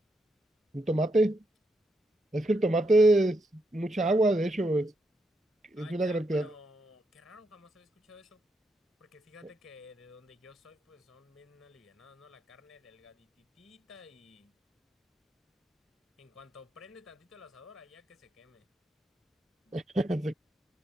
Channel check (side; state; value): both; normal; correlation 0.81